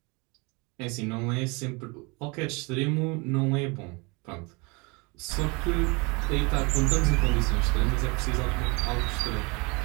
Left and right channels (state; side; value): quieter; left; 28.8 dB